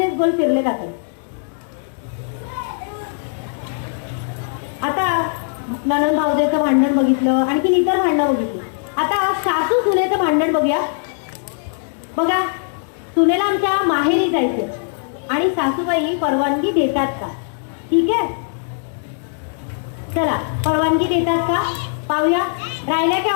गोल फिरले जातात. आता नणंद भावजेचं भांडण बघितलं, आणखी इतर भांडणं बघितली. आता सासू सुनेचं भांडण बघूया. बघा, सुनेला आमच्या माहेरी जायचं आणि सासूबाई परवानगी देतात का? ठीक आहे, चला परवानगी देतात का पाहूया. राहिल्या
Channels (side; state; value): right; silent; digital silence